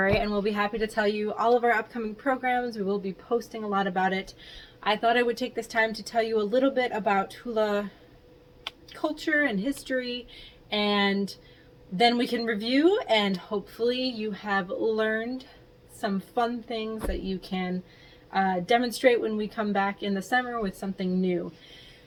and we'll be happy to tell you all of our upcoming programs. We will be posting a lot about it. I thought I would take this time to tell you a little bit about hula culture and history, and then we can review, and hopefully you have learned some fun things that you can demonstrate when we come back in the summer with something new.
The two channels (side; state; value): both; identical; correlation 1.00